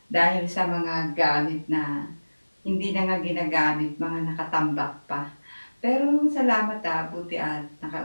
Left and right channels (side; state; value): both; inverted; correlation -1.00